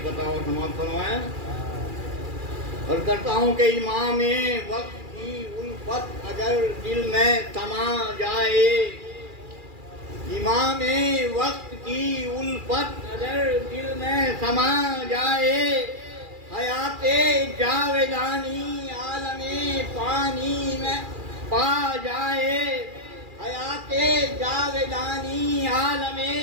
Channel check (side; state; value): left; late; 2.4 ms